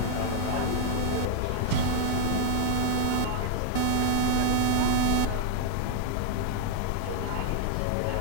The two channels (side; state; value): both; different; correlation 0.00